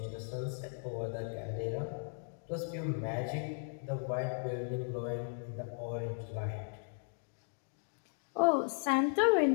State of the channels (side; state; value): right; silent; digital silence